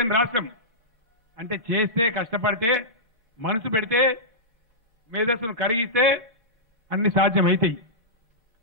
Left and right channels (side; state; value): both; normal; correlation -0.14